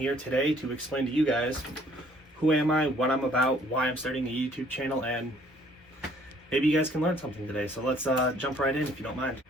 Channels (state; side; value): normal; both; correlation 0.60